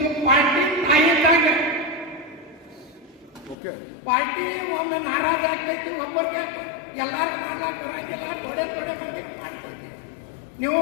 ಪಾರ್ಟಿ ತಾಯಿದ್ದಾಗ ಪಾರ್ಟಿ ಒಮ್ಮೆ ನಾರಾಜ ಆಗ್ತೈತಿ, ಒಬ್ಬರಿಗೆ ಎಲ್ಲರೂ ಮಾಡ್ಲಾಕ ಬರಂಗಿಲ್ಲ, ತೊಡೆ ಮಂದಿ ಮಾಡ್ತೈತಿ. ನೀವು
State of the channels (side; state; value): right; drops out; at 3.6 s